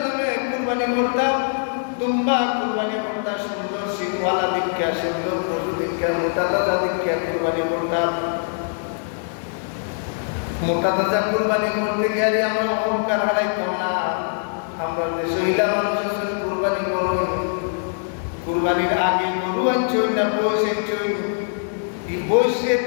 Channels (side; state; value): right; silent; 59 dB below the other